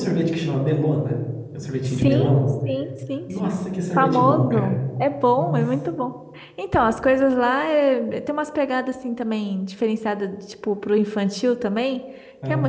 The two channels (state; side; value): identical; both; correlation 1.00